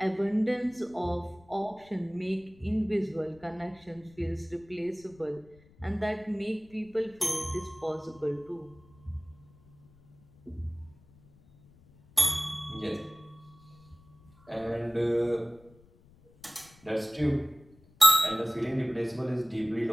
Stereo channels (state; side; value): noise; left; rumble, 27 dB below the sound